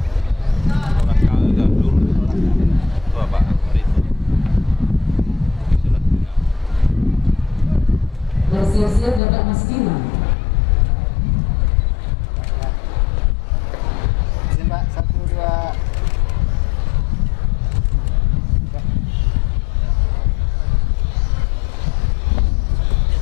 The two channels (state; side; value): drops out; right; at 9.2 s